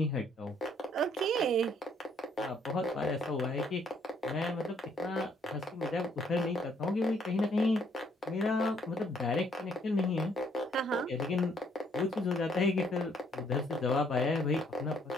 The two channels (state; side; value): normal; both; correlation 0.67